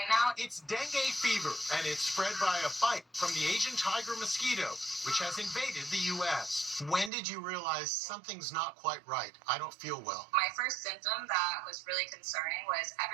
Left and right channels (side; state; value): left; drops out; at 7.1 s